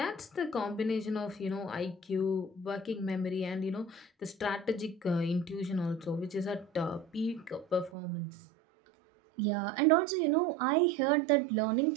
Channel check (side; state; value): left; drops out; at 7.9 s